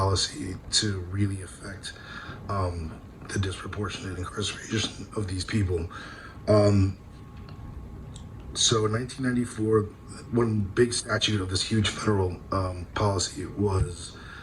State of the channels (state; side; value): identical; both; correlation 1.00